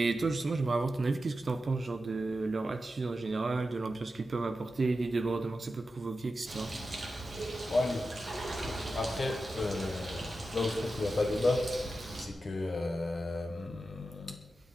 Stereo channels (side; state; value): both; normal; correlation 0.91